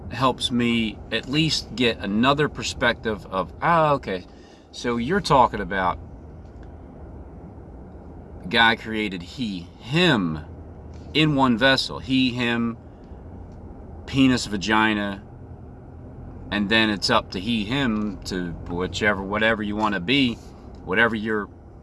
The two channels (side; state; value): both; identical; correlation 1.00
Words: helps me at least get another perspective of, okay, so you're talking about God created him in one vessel. He, him, penis, vagina, and then it's up to he, him to whatever you want to be, whatever you're,